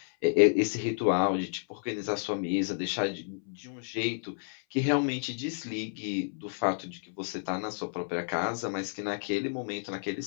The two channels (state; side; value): silent; right; 56 dB below the other